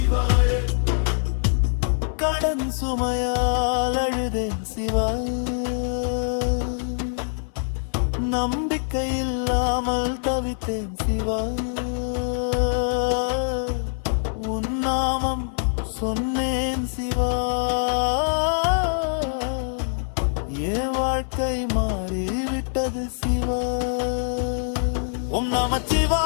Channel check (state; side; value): silent; right; 63 dB below the other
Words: கடன் சுமையால் அழுதேன் சிவா, நம்பிக்கையில்லாமல் தவித்தேன் சிவா. உன் நாமம் சொன்னேன் சிவா, என் வாழ்க்கை மாறிவிட்டது சிவா. ஓம்